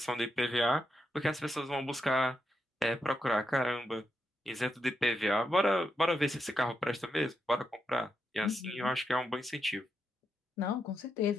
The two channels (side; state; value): both; normal; correlation 0.84